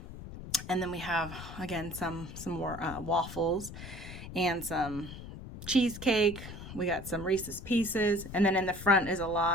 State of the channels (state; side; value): noise; left; rumble, 12 dB below the sound